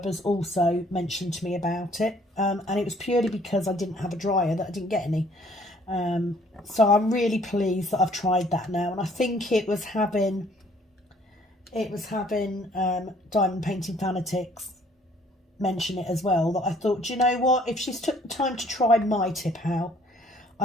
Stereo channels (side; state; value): both; normal; correlation 0.60